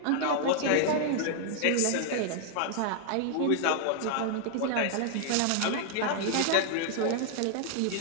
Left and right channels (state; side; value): different; both; correlation -0.01